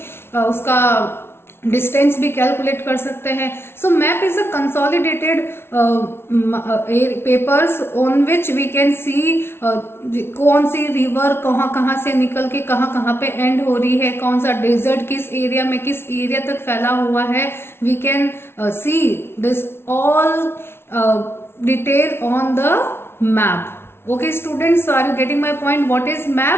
उसका डिस्टेंस भी कैलकुलेट कर सकते हैं। So map is a consolidated papers on which we can see कौन सी रिवर कहाँ से निकल के कहाँ पे एंड हो रही है, कौन सा डेजर्ट किस एरिया में किस एरिया तक फैला हुआ है। We can see this all detail on the map. Okay students, are you getting my point? What is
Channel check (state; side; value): late; right; 0.12 ms